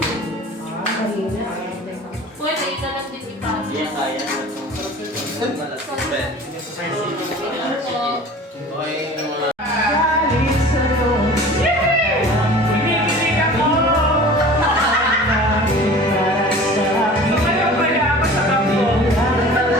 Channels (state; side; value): normal; both; correlation 0.42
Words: Pwede, italag din ipasok. Iya kaya.